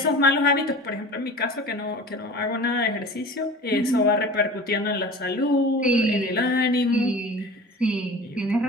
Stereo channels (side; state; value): both; normal; correlation 0.38